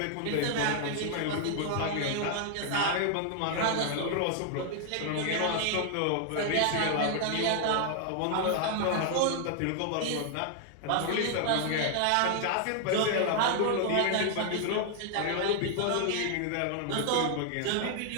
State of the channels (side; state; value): both; different; correlation 0.00